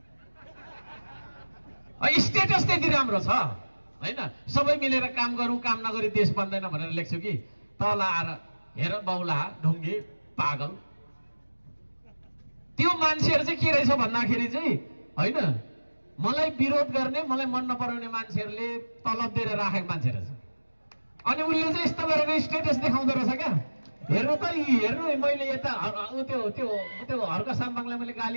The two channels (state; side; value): inverted; both; correlation -1.00